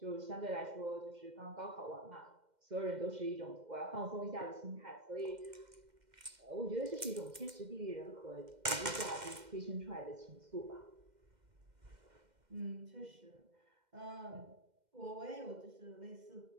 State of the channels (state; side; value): late; left; 2.1 ms